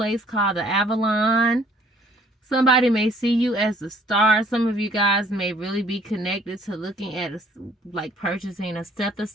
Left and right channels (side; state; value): both; normal; correlation 0.59